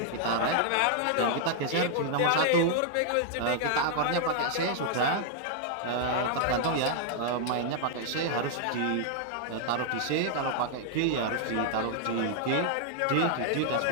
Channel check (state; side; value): different; both; correlation -0.01